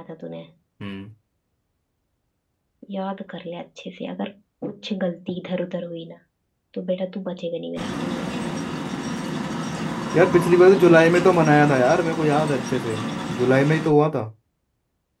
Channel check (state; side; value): identical; both; correlation 1.00